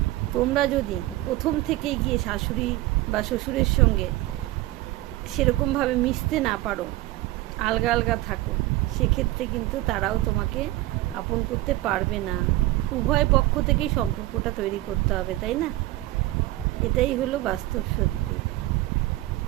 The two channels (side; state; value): left; quieter; 17.4 dB